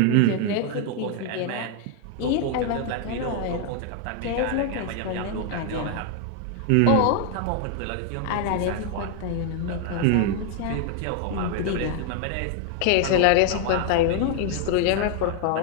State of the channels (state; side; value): different; both; correlation 0.00